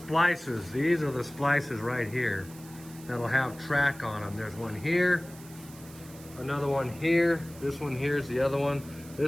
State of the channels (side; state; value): right; noise; hiss, 20 dB below the sound